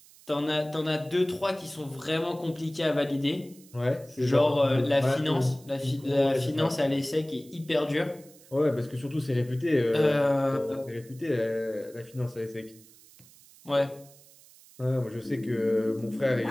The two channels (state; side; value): noise; right; hiss, 24 dB below the sound